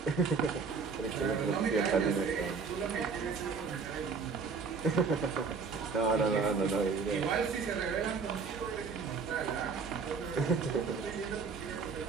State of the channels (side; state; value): left; quieter; 5.2 dB